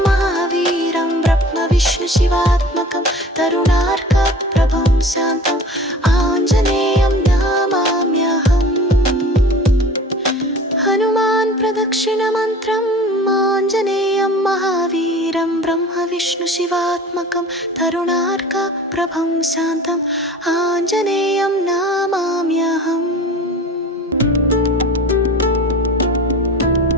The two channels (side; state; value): both; normal; correlation 0.42